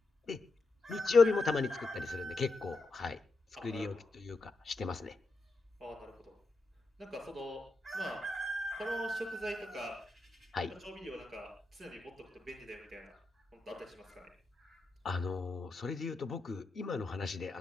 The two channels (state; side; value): quieter; right; 3.2 dB